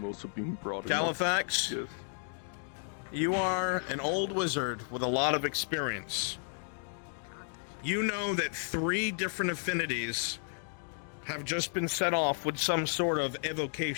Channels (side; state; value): right; silent; 56 dB below the other